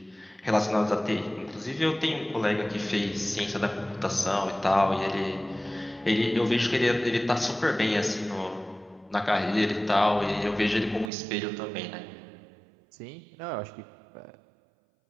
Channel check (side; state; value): left; drops out; at 11.1 s